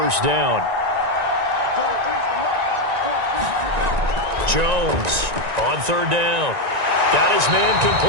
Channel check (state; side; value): late; left; 1.9 ms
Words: down. Jones on 3rd down. Got his man